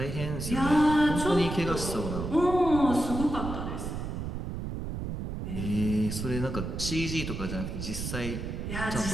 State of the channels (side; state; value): right; noise; rumble, 5 dB below the sound